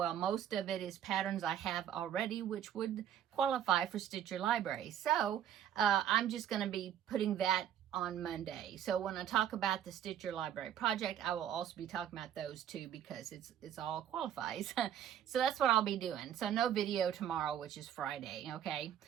most of it is patterns I have already, which would qualify for Stitch Your Library. So I'm just going to be putting that on Monday. So when I talk about the Stitch Your Library project, I will also be talking about those too, because it's all qualifies. So that's what I'll be doing. So no video tomorrow, which is Friday, okay?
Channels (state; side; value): quieter; left; 10.1 dB